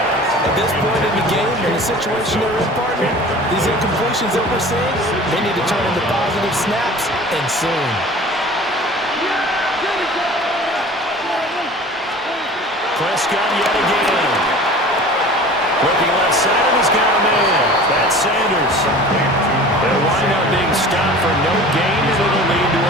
At this point in the game, in the situation they're in, partner, these incompletions that we're seeing, they need to turn into positive snaps, and soon. Prescott yet again. Looking left side, and he's got a man. That's Sanders. They'll wind up being stopped for no gain, and it'll lead to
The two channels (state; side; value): normal; both; correlation 0.42